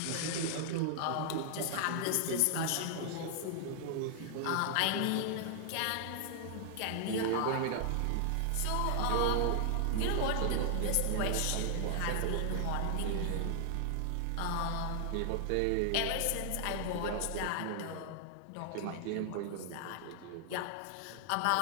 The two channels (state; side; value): different; both; correlation 0.00